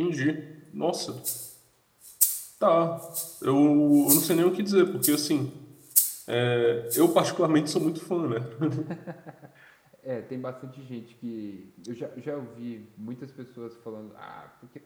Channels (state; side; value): identical; both; correlation 1.00